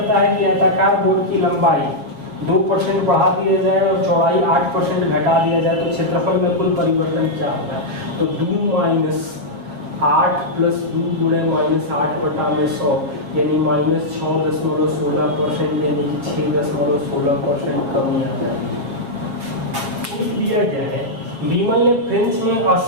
है कि आयताकार बोर्ड की लंबाई 2% बढ़ा दिया जाए और चौड़ाई 8% घटा दिया जाए तो क्षेत्रफल में कुल परिवर्तन क्या होगा? तो 2 माइनस 8 प्लस 2 गुणे माइनस 8 बटा में 100 यानी माइनस 6.16% यानी कि 6.16% कमी आ जाएगी। दिया गया है विमल ने फ्रेंच में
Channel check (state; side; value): late; left; 6.9 ms